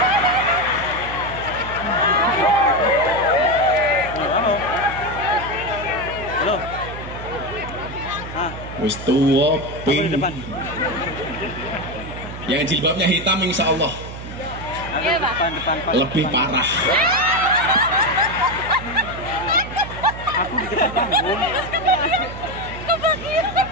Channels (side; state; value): right; noise; hum, 11 dB below the sound